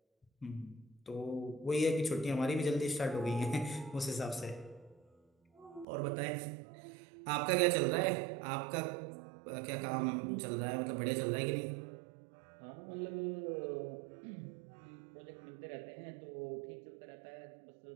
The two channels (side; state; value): left; drops out; at 5.9 s